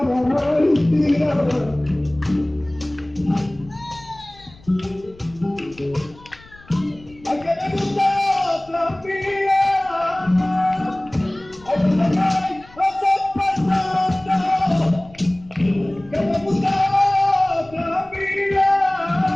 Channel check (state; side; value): noise; left; rumble, 24 dB below the sound